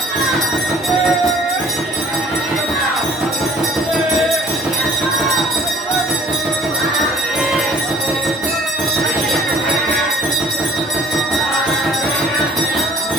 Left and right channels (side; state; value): both; normal; correlation 0.53